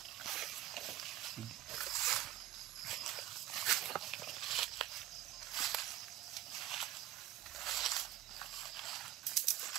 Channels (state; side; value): quieter; left; 13.7 dB